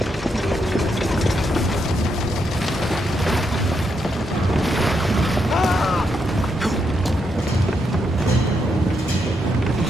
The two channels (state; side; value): normal; both; correlation 0.80